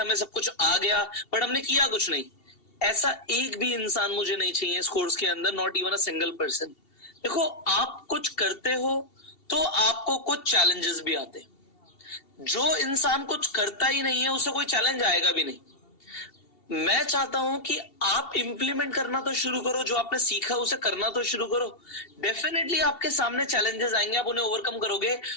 सब कुछ आ गया बट हमने किया कुछ नहीं। ऐसा एक भी इंसान मुझे नहीं चाहिए इस कोर्स के अंदर, not even a single person. देखो, आप कुछ करते हो तो आपको कुछ चैलेंजेस भी आते हैं। जो इंसान कुछ करता ही नहीं है उसे कोई चैलेंज आएगा भी नहीं। मैं चाहता हूं कि आप इंप्लीमेंट करना तो शुरू करो, जो आपने सीखा उसे करना तो शुरू करो। डेफिनेटली आपके सामने चैलेंजेस आएंगे, आप उन्हें ओवरकम करोगे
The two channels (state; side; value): late; right; 2.7 ms